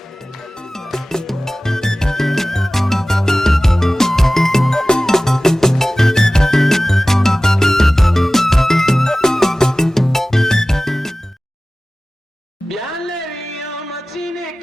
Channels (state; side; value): normal; both; correlation 0.97